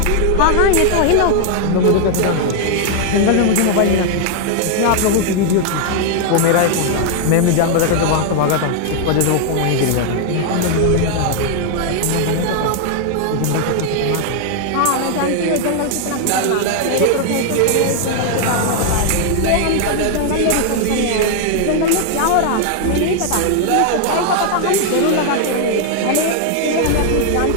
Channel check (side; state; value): both; different; correlation 0.00